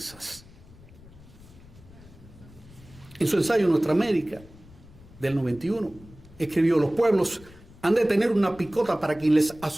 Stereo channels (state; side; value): noise; left; rumble, 22 dB below the sound